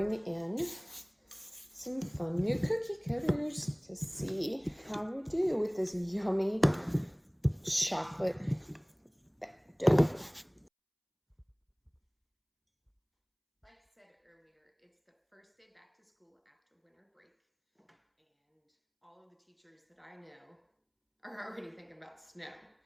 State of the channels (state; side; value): identical; both; correlation 1.00